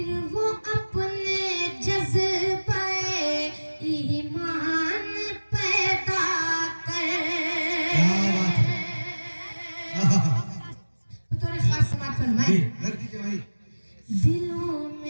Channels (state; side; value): inverted; both; correlation -1.00